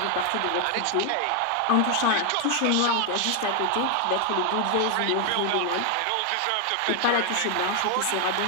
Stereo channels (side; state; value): both; different; correlation 0.00